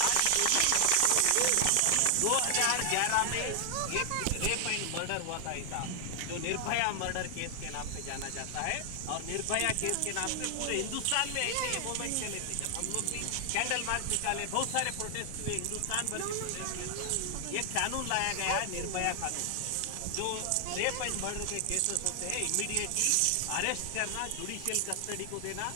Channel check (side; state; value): both; different; correlation 0.00